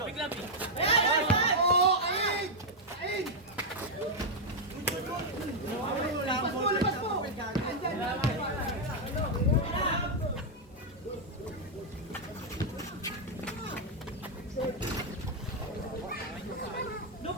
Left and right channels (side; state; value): both; normal; correlation -0.01